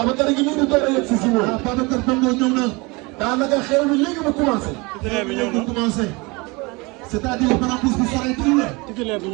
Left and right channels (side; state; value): left; quieter; 26.2 dB